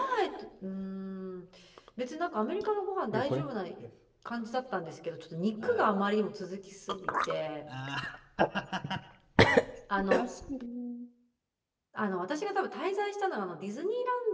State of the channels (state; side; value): identical; both; correlation 1.00